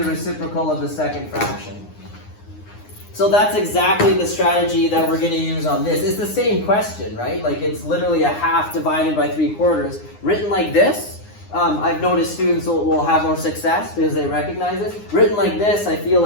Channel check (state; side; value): late; right; 9.7 ms